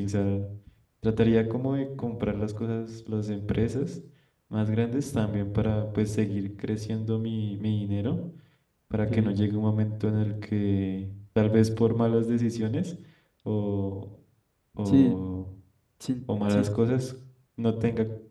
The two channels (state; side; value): identical; both; correlation 1.00